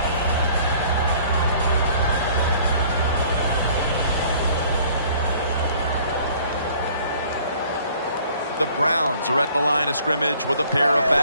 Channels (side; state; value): both; inverted; correlation -0.55